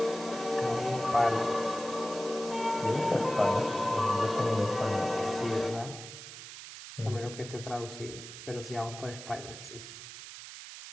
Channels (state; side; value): noise; right; hiss, 12 dB below the sound